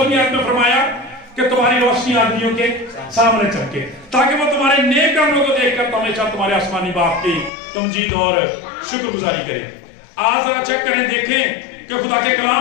आयत में फरमाया कि तुम्हारी रोशनी आदमियों के सामने चमके ताकि वो तुम्हारे नेक कामों को देखकर हमेशा तुम्हारे आसमानी बाप की तमजीद और शुक्रगुजारी करें। आज जरा चेक करें, देखें कि खुदा के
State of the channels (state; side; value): drops out; right; at 7.5 s